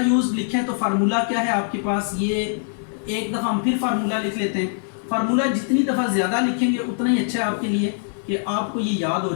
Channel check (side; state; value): right; silent; digital silence